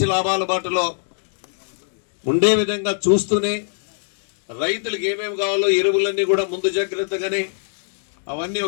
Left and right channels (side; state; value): right; silent; digital silence